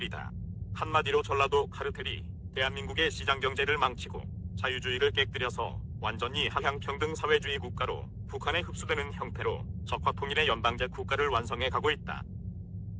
한마디로 전라도 카르텔이 대한민국의 시장경제를 망치고 자유주의를 깨뜨려서 완전히 하향평등 사회주의 국가로 북한에 흡수되는 형태로 적화통일의 연방제 국가를 완성해 가고 있다.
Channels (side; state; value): both; identical; correlation 1.00